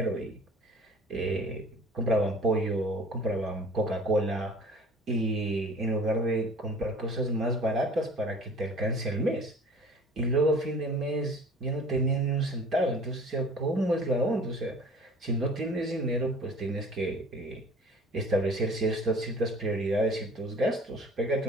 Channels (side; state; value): both; normal; correlation 0.47